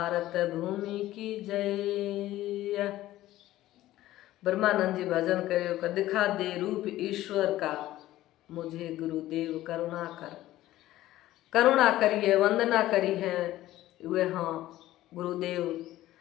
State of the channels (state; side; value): quieter; right; 15.1 dB